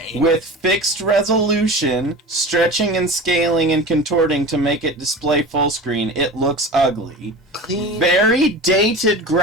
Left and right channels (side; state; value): both; normal; correlation 0.33